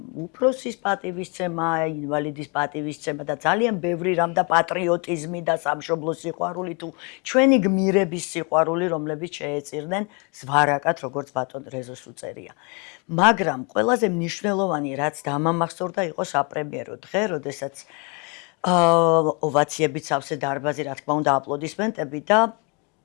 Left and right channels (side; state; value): right; quieter; 32.4 dB